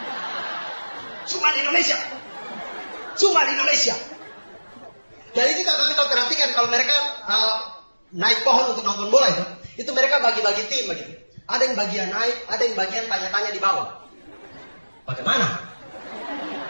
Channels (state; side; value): inverted; both; correlation -1.00